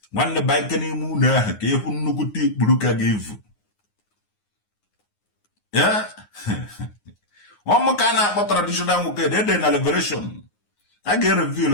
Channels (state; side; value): late; right; 9.6 ms